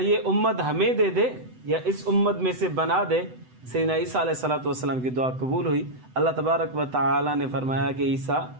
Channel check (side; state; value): left; late; 7.9 ms